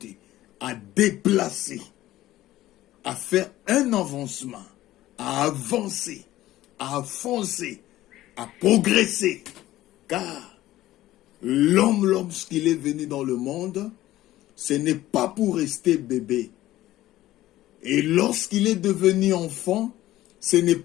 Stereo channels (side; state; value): right; quieter; 15.3 dB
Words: à déplacer, à faire un avancement, à avancer, à foncer, à progresser. Car l'homme, lorsqu'il est venu dans le monde, ce n'est pas pour rester bébé. Et lorsqu'il est devenu enfant, ce n'est